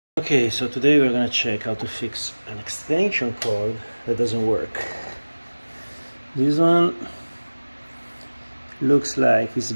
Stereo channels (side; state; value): both; inverted; correlation -1.00